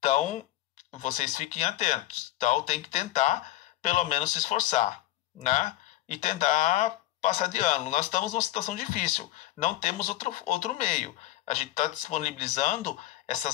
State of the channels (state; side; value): quieter; right; 15.5 dB